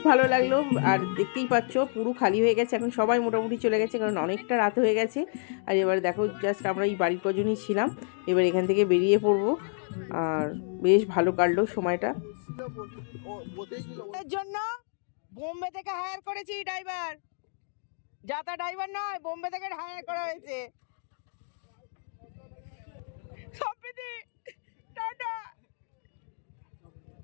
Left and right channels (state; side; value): silent; right; digital silence